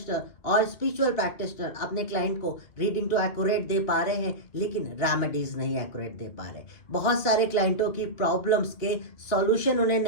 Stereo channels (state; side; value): late; right; 2.6 ms